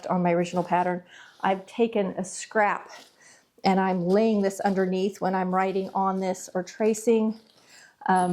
on my original pattern? I've taken a scrap and I'm laying this underneath when I'm writing on this or tracing,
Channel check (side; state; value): both; identical; correlation 1.00